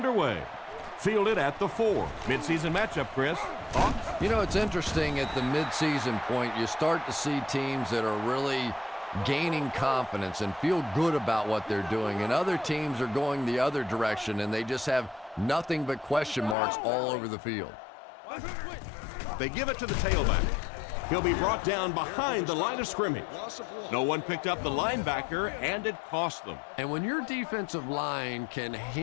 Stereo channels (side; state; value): right; drops out; at 16.6 s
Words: Fielded at the 4. Midseason matchup, Chris. Thoughts? You know, it's interesting at the midseason point, you start to see teams that are really gaining confidence and feel good about what they're doing, and other teams are going the other direction, and they just have nothing but question marks all over the field. They give it to the tailback. He'll be brought down behind the line of scrimmage. No one picked up the linebacker, and it cost them. And when your defensive line can